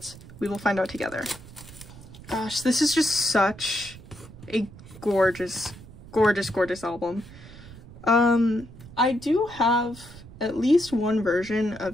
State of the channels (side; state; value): right; noise; rumble, 17 dB below the sound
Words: we will find out together. Gosh, this is just such a gorgeous, gorgeous, gorgeous album. I do have at least one version